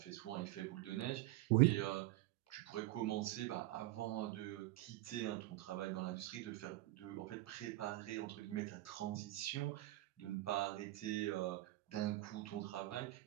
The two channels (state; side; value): quieter; left; 17.4 dB